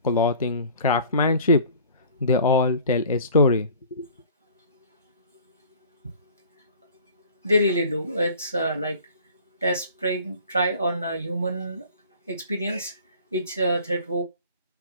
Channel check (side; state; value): both; inverted; correlation -0.48